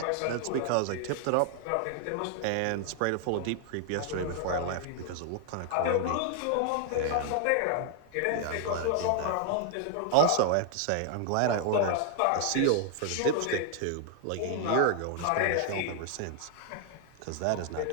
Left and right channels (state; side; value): different; both; correlation 0.00